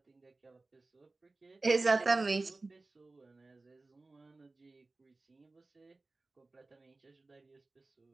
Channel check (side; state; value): left; quieter; 3.3 dB